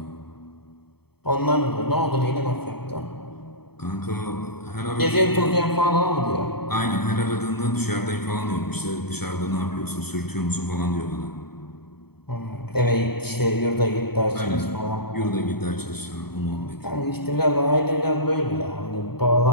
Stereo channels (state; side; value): late; right; 0.96 ms